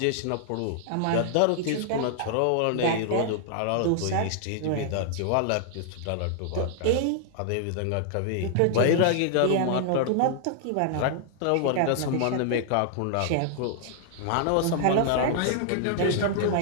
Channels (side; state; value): both; different; correlation -0.01